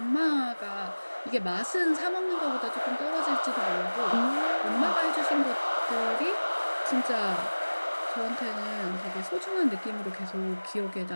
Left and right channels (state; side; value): inverted; both; correlation -1.00